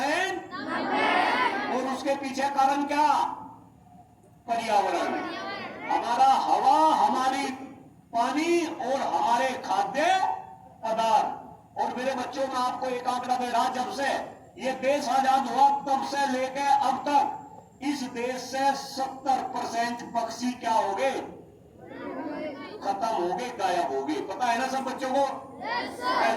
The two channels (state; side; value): identical; both; correlation 1.00